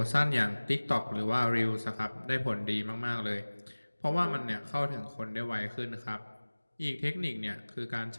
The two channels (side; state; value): both; inverted; correlation -1.00